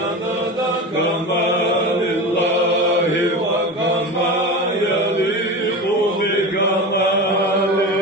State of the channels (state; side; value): normal; both; correlation 0.27